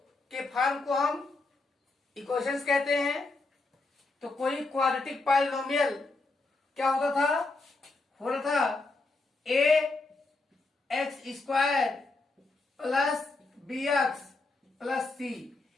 के फॉर्म को हम इक्वेशंस कहते हैं। तो कोई क्वाड्रेटिक पॉलिनोमियल क्या होता था, हो रहा था A x square plus B x plus C,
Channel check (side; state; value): right; quieter; 3.5 dB